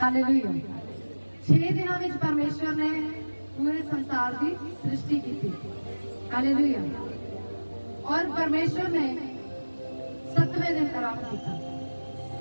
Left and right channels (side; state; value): both; inverted; correlation -1.00